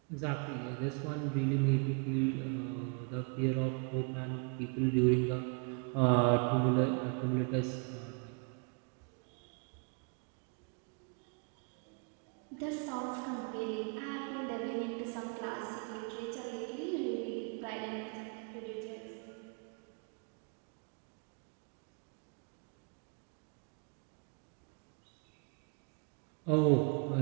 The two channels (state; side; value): quieter; left; 36.3 dB